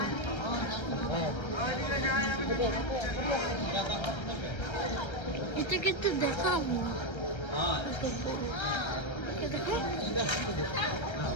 এটাকে তো দেখাবো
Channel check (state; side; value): late; right; 1.3 ms